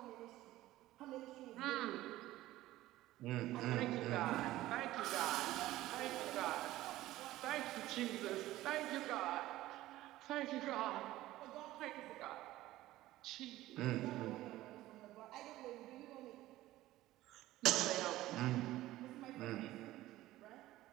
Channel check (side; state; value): left; quieter; 16.1 dB